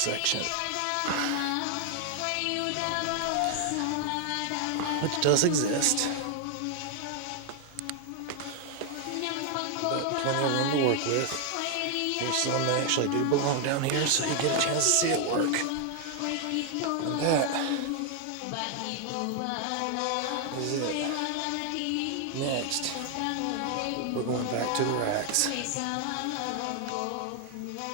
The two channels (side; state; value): both; different; correlation 0.00